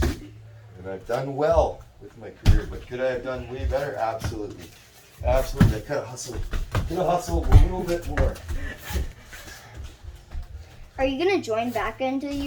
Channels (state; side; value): identical; both; correlation 1.00